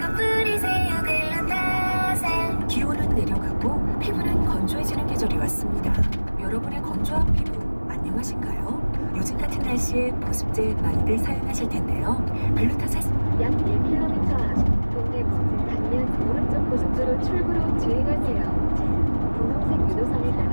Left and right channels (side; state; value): both; inverted; correlation -1.00